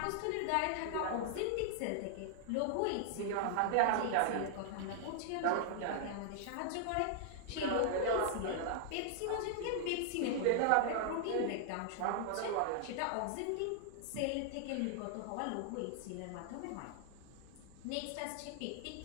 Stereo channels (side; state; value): both; different; correlation -0.01